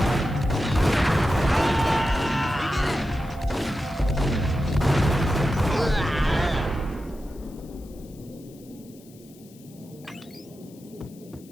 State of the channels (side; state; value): left; noise; hiss, 26 dB below the sound